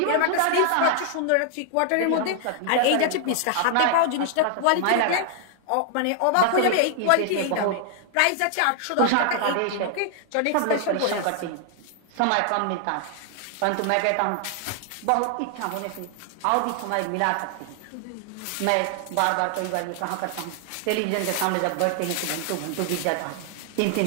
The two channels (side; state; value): both; different; correlation 0.00